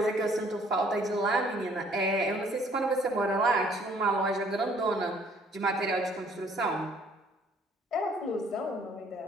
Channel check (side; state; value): both; normal; correlation 0.60